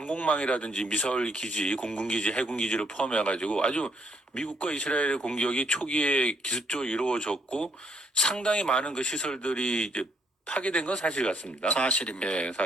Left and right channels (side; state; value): both; normal; correlation 0.70